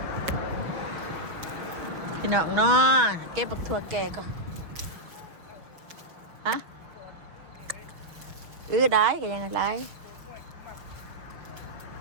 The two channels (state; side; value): late; left; 6.0 ms